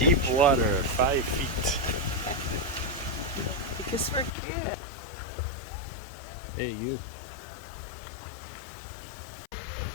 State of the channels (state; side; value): drops out; right; at 4.3 s